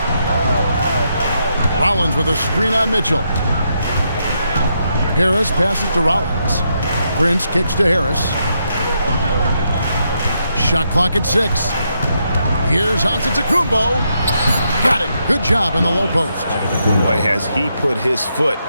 Rollins with a screen on Mitchell. Harris passes to Rollins. Prince kicks to Harris. Shot clock at 6. Here's Antetokounmpo. Got it. Good job in the low post. Boy, has he put his foot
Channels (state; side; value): inverted; both; correlation -0.80